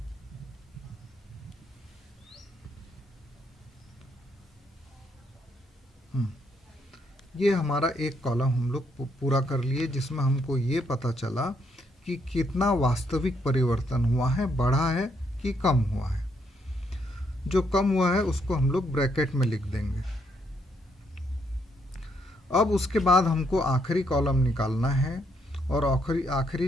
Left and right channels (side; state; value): both; normal; correlation 0.74